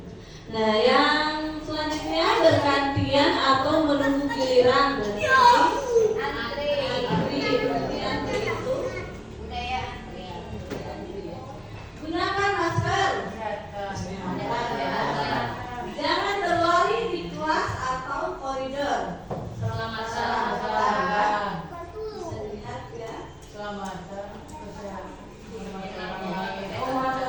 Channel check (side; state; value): both; identical; correlation 1.00